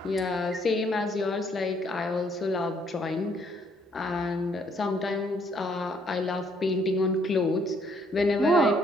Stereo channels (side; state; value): both; normal; correlation 0.67